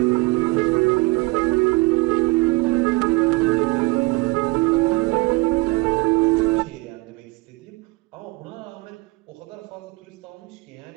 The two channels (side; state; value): left; quieter; 24.8 dB